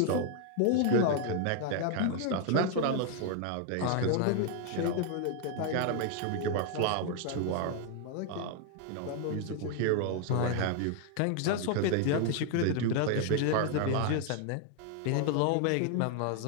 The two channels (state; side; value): different; both; correlation 0.00